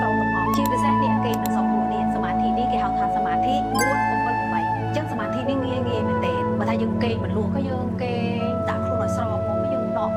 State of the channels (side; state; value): both; identical; correlation 1.00